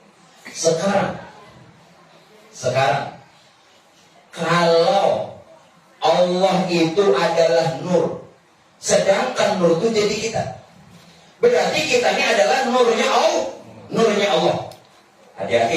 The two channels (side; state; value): both; identical; correlation 1.00